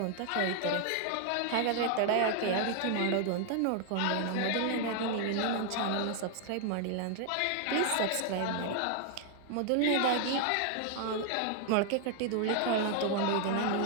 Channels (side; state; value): both; different; correlation 0.00